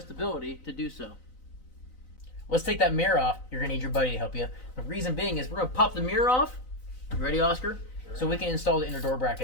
to do so. Let's take that mirror off. You're gonna need your buddy to help you. The reason being is we're gonna pop the mirror off. You ready, Oscar? So we can install the inner door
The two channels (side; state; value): right; late; 3.9 ms